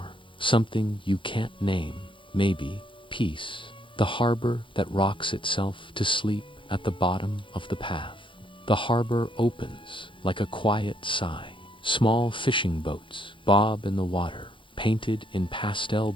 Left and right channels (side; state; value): right; late; 0.25 ms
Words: something you can't name, maybe peace, the harbor that rocks itself to sleep at the bottom of the path. The harbor opens like a quiet sigh. Small fishing boats bob in the water, painted in pastel